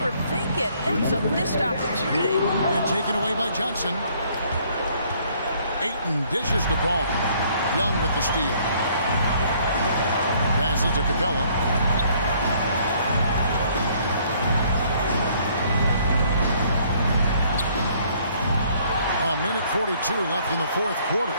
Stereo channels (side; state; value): both; inverted; correlation -0.62